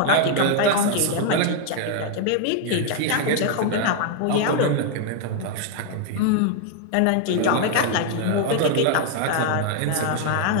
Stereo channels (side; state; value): both; different; correlation 0.00